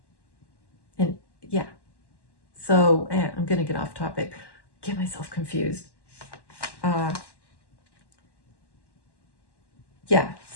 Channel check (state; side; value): late; right; 1.1 ms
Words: And yeah. So I'm going to get off topic. Get myself confused. Yeah,